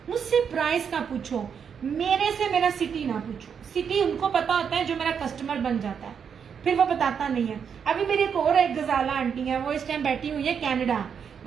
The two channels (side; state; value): left; quieter; 7.1 dB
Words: मुझसे प्राइस का पूछो, मेरे से मेरा सिटी ना पूछो। सिटी उनको पता होता है जो मेरा कस्टमर बन जाता है, फिर वो बताता नहीं है। अभी मेरी एक और एक गजाला आंटी है, वो इस टाइम बैठी हुई है कनाडा,